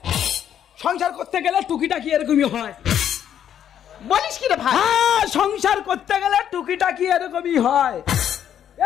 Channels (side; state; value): right; quieter; 9.8 dB